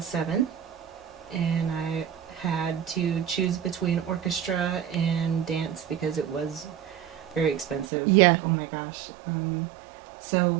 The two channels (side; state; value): left; drops out; at 7.9 s